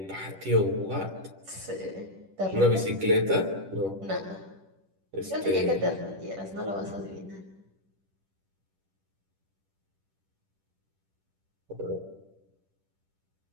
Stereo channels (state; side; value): late; left; 10 ms